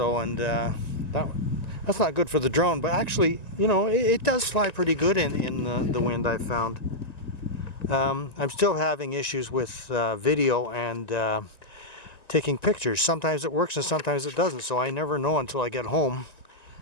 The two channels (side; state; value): right; late; 1.9 ms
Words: and that's not good for the drone. But actually, you know, it does fly pretty good in the wind, I've found. I'm still having issues with video and taking pictures. Sometimes it works and sometimes it doesn't, so I never know until I get home